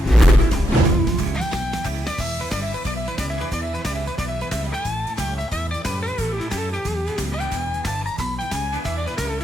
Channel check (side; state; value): both; normal; correlation 0.81